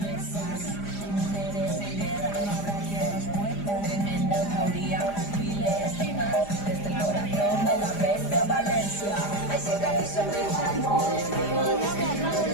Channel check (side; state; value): right; late; 4.9 ms